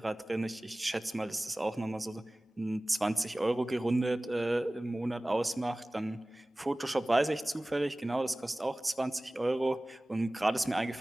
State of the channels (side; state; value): both; normal; correlation 0.98